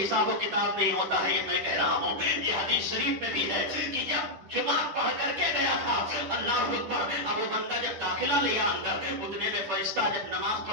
حساب و کتاب نہیں ہوتا ہے۔ یہ میں کہہ رہا ہوں، یہ حدیث شریف میں بھی ہے کہ جب جمعہ پڑھ کر کے گیا تھا، اللہ اکبر، اب وہ بندہ جب داخلہ لیا اندر، اتنے میں فرشتہ جب نماز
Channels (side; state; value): left; late; 10 ms